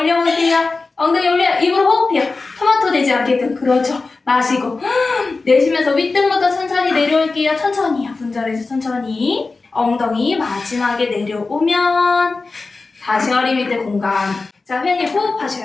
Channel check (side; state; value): right; quieter; 3.8 dB